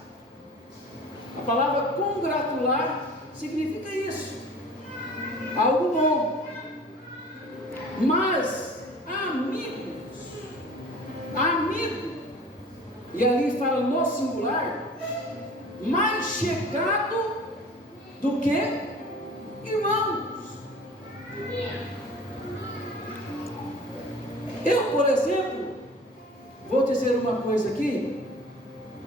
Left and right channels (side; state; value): both; normal; correlation 0.43